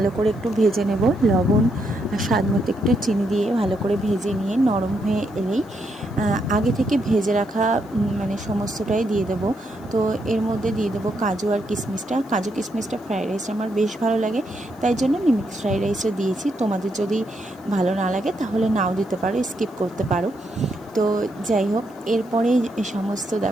করে একটু ভেজে নেব। লবণ আর স্বাদ মতো একটু চিনি দিয়ে ভালো করে ভেজে নিয়ে নরম হয়ে এলেই আগে থেকে ভেজে রাখা সমস্তটাই দিয়ে দেবো। তো এর মধ্যে দিয়ে দেবো কাজু আর কিশমিশটা। কাজু কিশমিশটা ফ্রাইড রাইস আমার বেশ ভালো লাগে, তাই জন্য আমি মিক্স ফ্রাইড রাইসও দিয়েছি। তোমাদের যদি ভালো না লাগে তাহলে নাও দিতে পারো, স্কিপ করতে পারো। তো যাই হোক, এরপরে সমস্ত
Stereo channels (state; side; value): noise; left; hiss, 30 dB below the sound